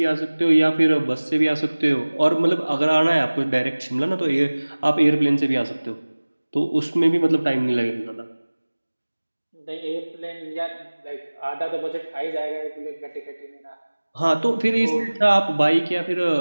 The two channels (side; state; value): both; inverted; correlation -1.00